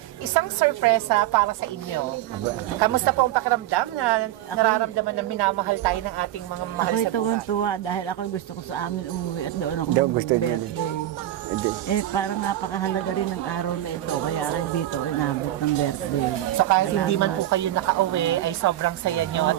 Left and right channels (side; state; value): left; quieter; 13.6 dB